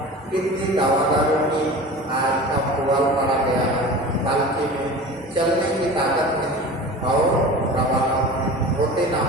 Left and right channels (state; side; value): normal; both; correlation 0.36